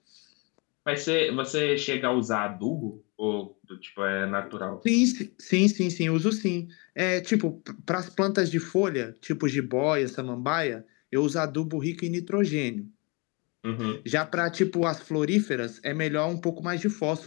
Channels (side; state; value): right; quieter; 30.4 dB